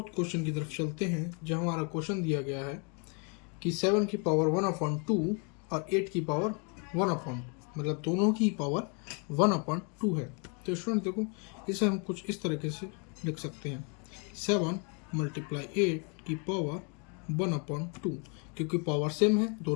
क्वेश्चन की तरफ चलते हैं, जहाँ हमारा क्वेश्चन दिया गया है कि 7 की पावर 1/2 और 8 की पावर 1/2, मतलब दोनों की पावर 1/2 है। तो स्टूडेंट देखो, इसे हम कुछ इस तरीके से लिख सकते हैं, 7 × 8 की पावर 1/2। क्योंकि पावर सेम है,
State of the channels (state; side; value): quieter; right; 35.9 dB